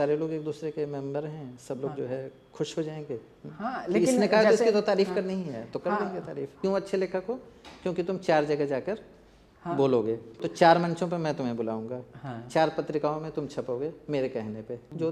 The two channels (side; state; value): both; identical; correlation 1.00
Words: लोग एक दूसरे के मेंबर हैं, सब लोग जो है खुश हो जाएंगे। हाँ, कि लेकिन इसने कहा तो जैसे इसकी तो तारीफ करनी ही है, तो कर हाँ। देंगे तारीफ। क्यों अच्छे लेखक हो? क्योंकि तुम 4 जगह जाकर हाँ। बोलोगे, तो 4 मंचों पे मैं तुम्हें बुलाऊंगा, हाँ। 4 पत्रिकाओं में तुम छपोगे मेरे कहने पे। जो